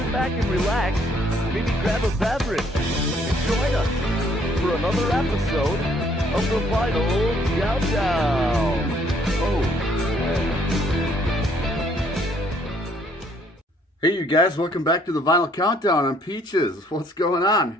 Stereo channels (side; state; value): both; normal; correlation 0.65